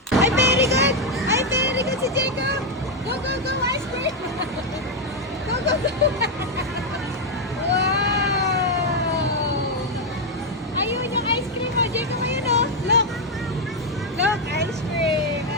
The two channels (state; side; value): normal; both; correlation 0.03